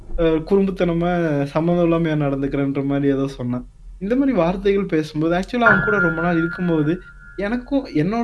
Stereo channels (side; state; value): both; identical; correlation 1.00